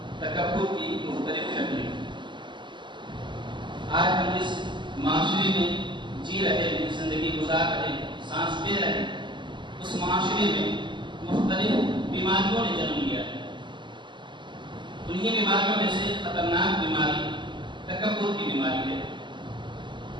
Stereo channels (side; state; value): left; late; 0.23 ms